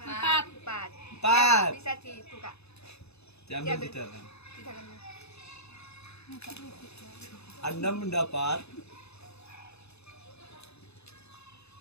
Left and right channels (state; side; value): late; right; 0.80 ms